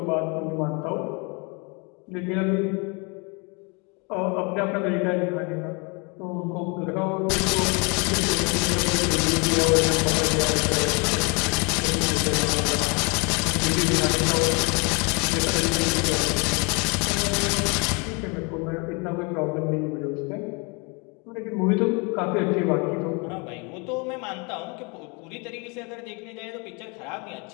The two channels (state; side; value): quieter; right; 31.4 dB